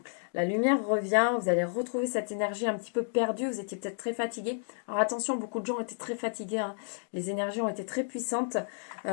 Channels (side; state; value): right; silent; digital silence